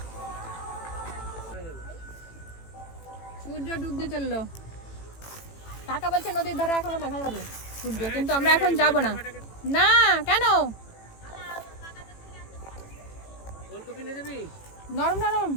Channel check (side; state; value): right; late; 18 ms